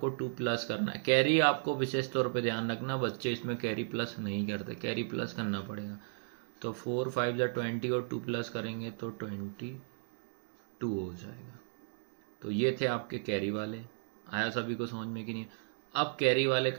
2 प्लस करना है। कैरी आपको विशेष तौर पे ध्यान रखना, बच्चे इसमें कैरी प्लस नहीं करते, कैरी प्लस करना पड़ेगा। तो 4 5 या 20 और 2 प्लस करेंगे तो 22 हो जाएगा। तो ये थे आपके कैरी वाले। आया सभी को समझ में कि नहीं। अब कैरी वाले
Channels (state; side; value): silent; left; digital silence